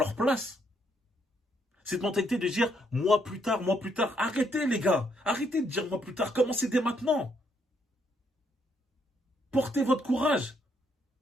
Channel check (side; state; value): both; normal; correlation 0.73